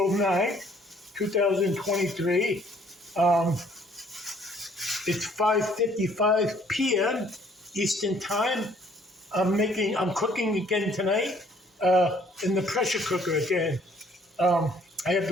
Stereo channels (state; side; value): normal; both; correlation 0.61